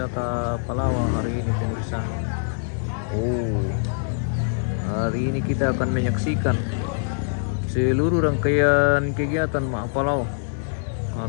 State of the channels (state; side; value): silent; right; digital silence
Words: Palawak hari ini pemirsa. Hari ini kita akan menyaksikan seluruh rangkaian kegiatan Mak Palau